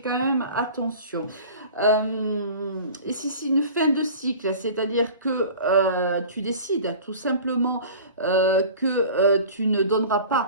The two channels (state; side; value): inverted; both; correlation -0.40